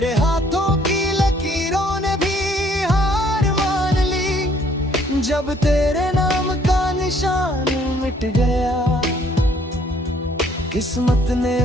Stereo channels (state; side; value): normal; both; correlation 0.63